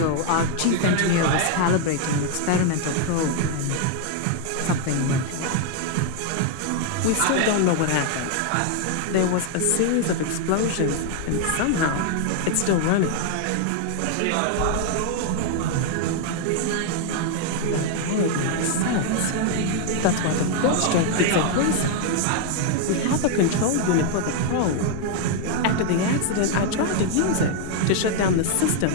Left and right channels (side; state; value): both; different; correlation 0.00